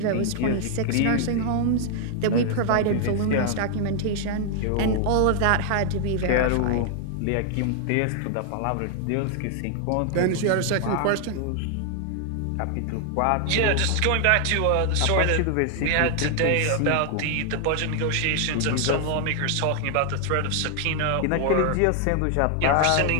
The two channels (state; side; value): different; both; correlation 0.00